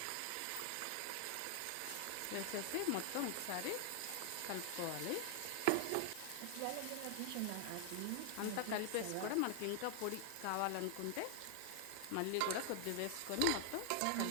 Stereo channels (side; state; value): both; different; correlation 0.00